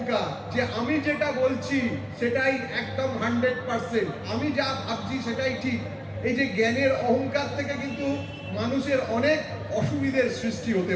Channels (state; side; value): identical; both; correlation 1.00